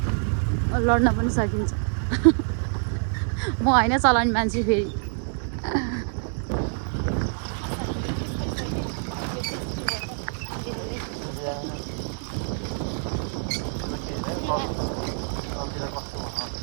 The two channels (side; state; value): left; silent; 61 dB below the other